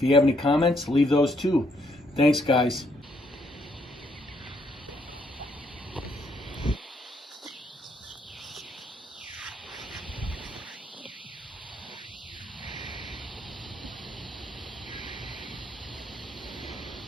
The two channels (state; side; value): normal; both; correlation 0.72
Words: you have any comments, leave those too. Thanks, guys.